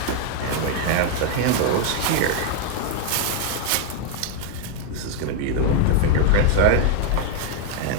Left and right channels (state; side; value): different; both; correlation 0.01